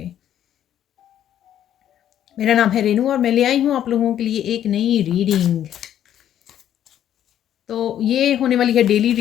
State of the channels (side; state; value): right; quieter; 10.7 dB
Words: मेरा नाम है रेनू और मैं ले आई हूँ आप लोगों के लिए एक नई रीडिंग। तो ये होने वाली है डेली